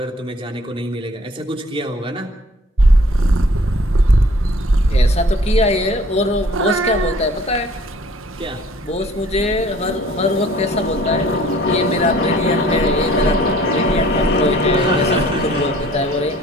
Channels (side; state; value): both; normal; correlation 0.54